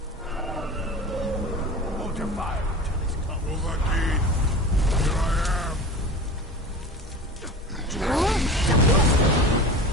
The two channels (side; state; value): both; normal; correlation 0.34